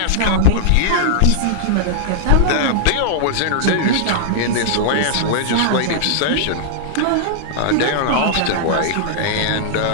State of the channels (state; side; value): different; both; correlation -0.01